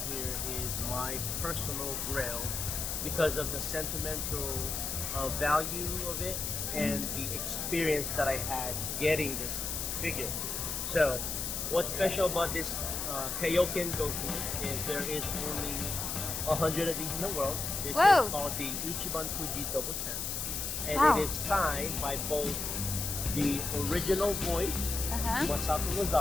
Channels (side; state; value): left; noise; hiss, 3 dB below the sound